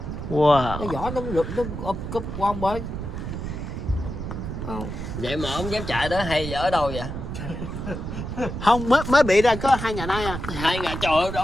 Wow. Cái vỏ nó rụt nó úp cúp qua một bên. Vậy mà ông dám chạy đó hay ở đâu vậy? Không, mới bị ra có 2 ngày nay à. 2 ngày trời ơi,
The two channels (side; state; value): right; noise; rumble, 6 dB below the sound